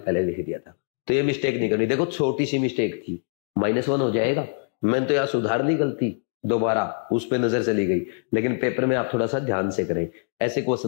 लिख दिया था, तो ये मिस्टेक नहीं करनी। देखो छोटी सी मिस्टेक थी, -1 हो जाएगा, मैंने तो यहाँ सुधार ली गलती, दोबारा उस पे नजर चली गई, लेकिन पेपर में आप थोड़ा सा ध्यान से करें, ऐसे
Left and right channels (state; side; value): silent; right; 62 dB below the other